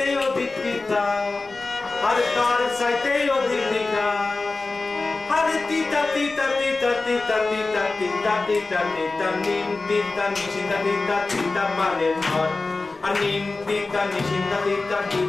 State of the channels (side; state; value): right; quieter; 3.5 dB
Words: অধিক তিতা আর তার চাইতে অধিক তিতা আরে তিতা তিতা তিতা তিতা তিতা তিতা তিতা তিতা নিম তিতা নিশিন্দা তিতা তিতা মানে আর নিম তিতা নিশিন্দা তিতা